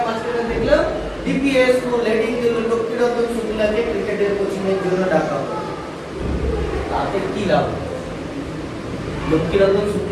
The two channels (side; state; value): both; identical; correlation 1.00